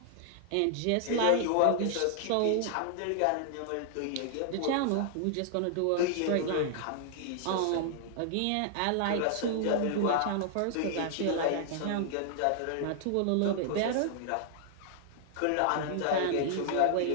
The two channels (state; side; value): different; both; correlation -0.01